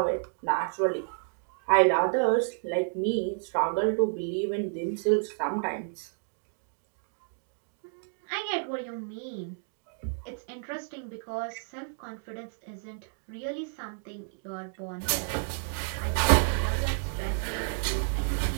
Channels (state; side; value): silent; left; digital silence